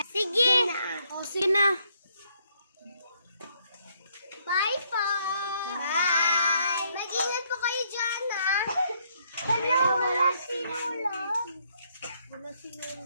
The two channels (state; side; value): inverted; both; correlation -0.71